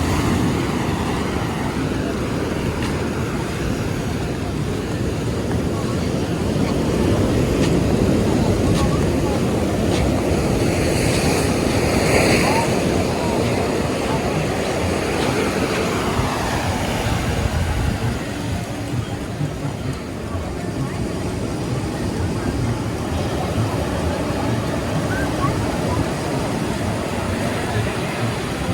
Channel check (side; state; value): both; identical; correlation 1.00